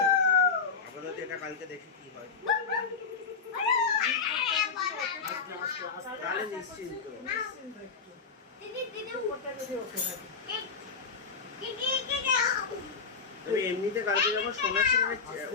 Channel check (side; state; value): right; quieter; 5.4 dB